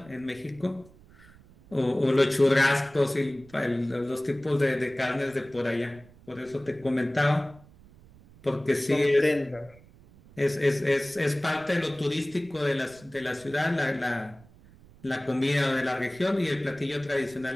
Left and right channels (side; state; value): right; noise; rumble, 24 dB below the sound